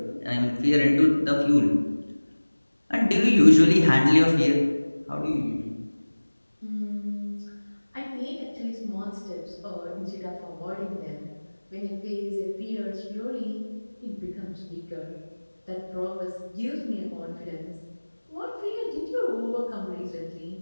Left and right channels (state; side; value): inverted; both; correlation -1.00